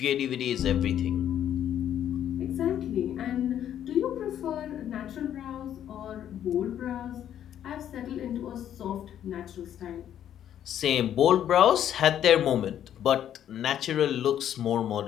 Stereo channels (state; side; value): quieter; right; 10.4 dB